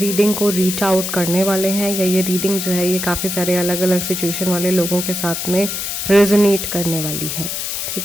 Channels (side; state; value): left; noise; hiss, 3 dB below the sound